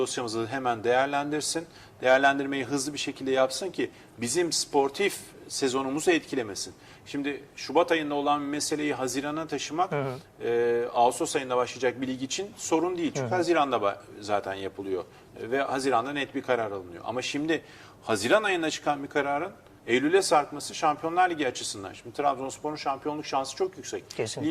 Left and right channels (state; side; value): identical; both; correlation 1.00